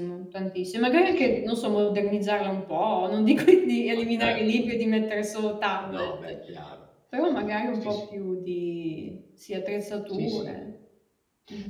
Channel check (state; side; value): identical; both; correlation 1.00